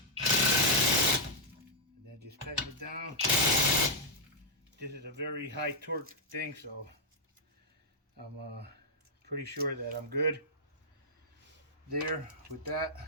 And then just tighten it down. This is a very high torque thing, so I'm pretty sure that I'm good there with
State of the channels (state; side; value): normal; both; correlation -0.05